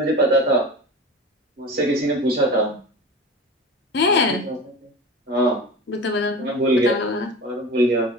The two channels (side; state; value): both; normal; correlation 0.32